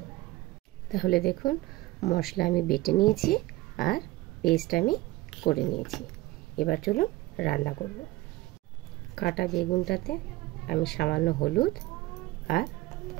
তাহলে দেখুন মশলা আমি বেটে নিয়েছি আর পেস্ট আমি করে নিয়েছি। এবার চলুন রান্না করব। কাটা বেগুনটাতে আমি সামান্য হলুদ আর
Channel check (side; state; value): left; quieter; 18.7 dB